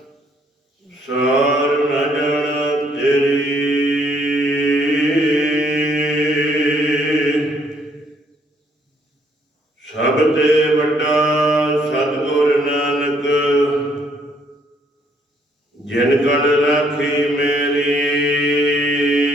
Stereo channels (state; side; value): normal; both; correlation 0.67